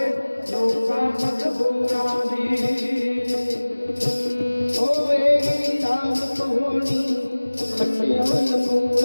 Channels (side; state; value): both; inverted; correlation -1.00